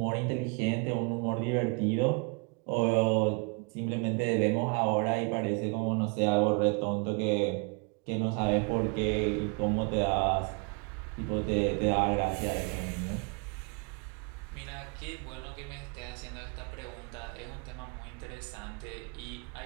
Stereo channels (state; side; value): quieter; left; 32.9 dB